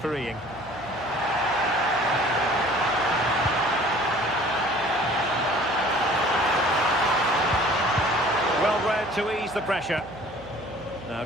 Well read to ease the pressure. Now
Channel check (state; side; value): noise; right; hum, 18 dB below the sound